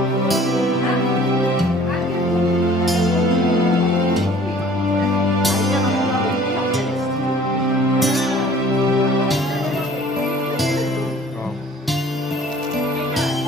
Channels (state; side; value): normal; both; correlation 0.52